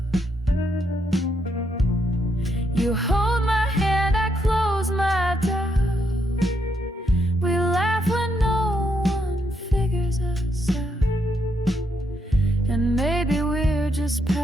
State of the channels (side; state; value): both; normal; correlation 0.78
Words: You hold my hand, I close my doubt. We laugh when no one figures us out, and maybe we're just